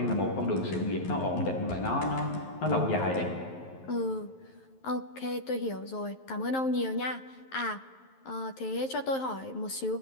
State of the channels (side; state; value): right; late; 11 ms